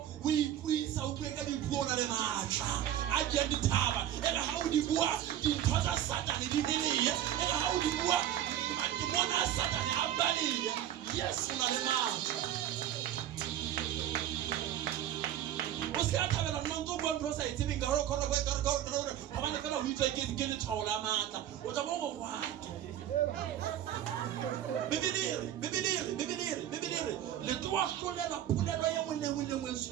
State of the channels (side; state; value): left; quieter; 11.4 dB